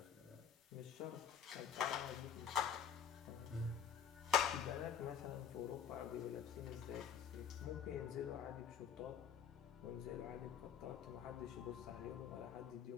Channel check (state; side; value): quieter; right; 8.0 dB